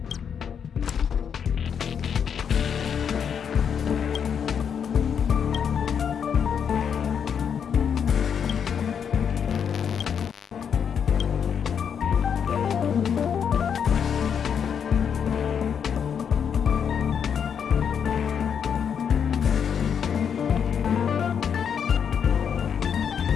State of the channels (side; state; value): right; quieter; 7.5 dB